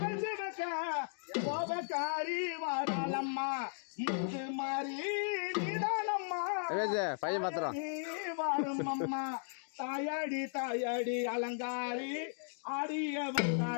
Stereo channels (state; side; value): silent; right; digital silence